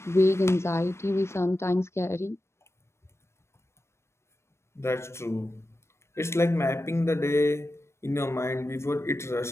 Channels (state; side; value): late; right; 0.13 ms